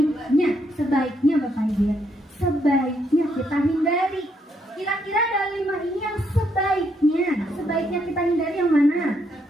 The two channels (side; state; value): both; normal; correlation 0.75